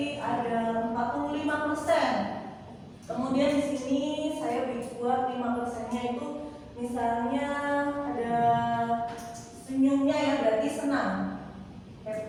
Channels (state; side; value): identical; both; correlation 1.00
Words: ada 45%. Kemudian di sini saya buat 5%-nya itu misalnya ada senyumnya ya, berarti senang,